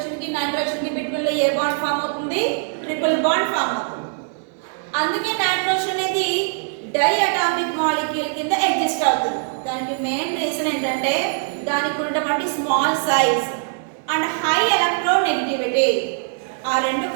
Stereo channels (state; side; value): silent; left; 64 dB below the other